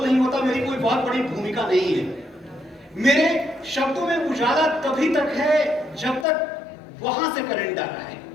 नहीं होता, मेरी कोई बहुत बड़ी भूमिका नहीं है। मेरे शब्दों में उजाला तभी तक है जब तक वहां से करंट आ रहा है।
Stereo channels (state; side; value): drops out; right; at 6.2 s